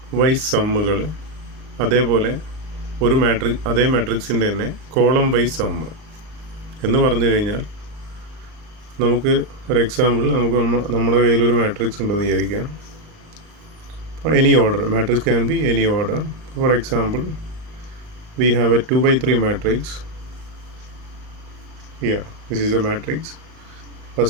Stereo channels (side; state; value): left; late; 38 ms